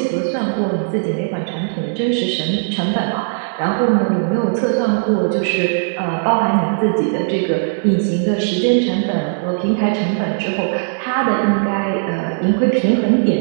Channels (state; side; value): silent; left; digital silence